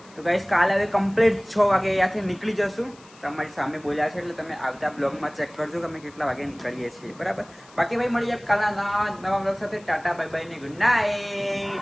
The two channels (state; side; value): noise; left; hiss, 25 dB below the sound